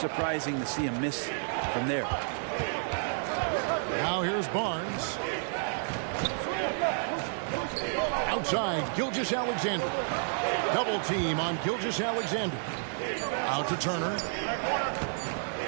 to see him miss from there. Now here's Barnes. Outside, Gilgeous-Alexander. Double team on Gilgeous-Alexander. Out to Turner.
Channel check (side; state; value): left; silent; 57 dB below the other